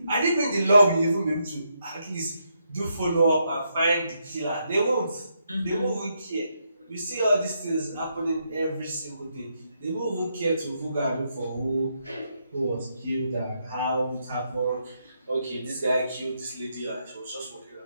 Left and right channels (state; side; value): inverted; both; correlation -0.79